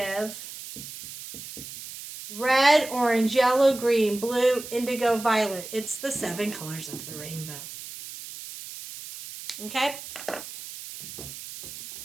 Red, orange, yellow, green, blue, indigo, violet. It's the 7 colors of the rainbow. Okay?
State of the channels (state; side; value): noise; right; hiss, 12 dB below the sound